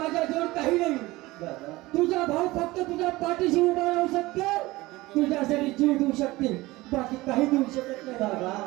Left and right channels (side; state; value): left; quieter; 19.7 dB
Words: काही नाही तुझा भाऊ फक्त तुझ्या पाठीशी उभा राहू शकतो तुझ्यासाठी जीव देऊ शकते बाकी काही देऊ शकत नाही